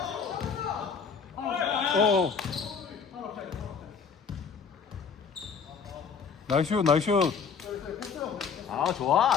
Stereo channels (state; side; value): quieter; right; 6.1 dB